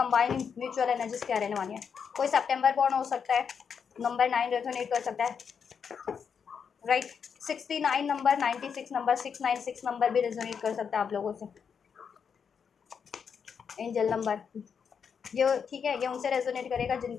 म्यूचुअल एनर्जीज क्या रहने वाली है, कोई सितंबर बॉर्न हो सकता है, नंबर 9 रेजोनेट कर सकता है, राइट, 69 नंबर, 96 नंबर, 696 नंबर भी रेजोनेट कर सकता है आप लोगों से, एंजल नंबर, ये ठीक है, ये उनसे रेजोनेट करेगा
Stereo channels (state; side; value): quieter; right; 6.7 dB